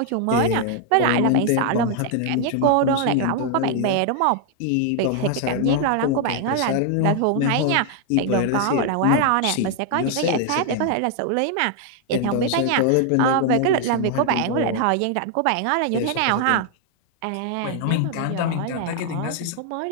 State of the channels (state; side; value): different; both; correlation 0.00